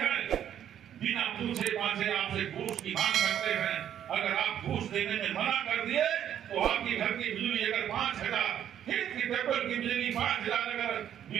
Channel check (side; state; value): left; quieter; 10.0 dB